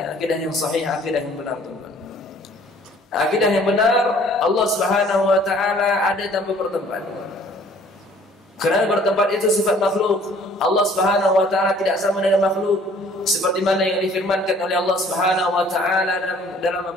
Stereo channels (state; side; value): normal; both; correlation 0.55